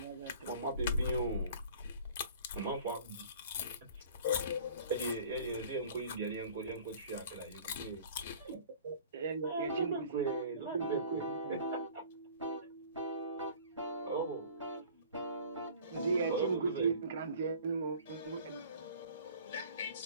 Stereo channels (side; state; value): both; inverted; correlation -0.47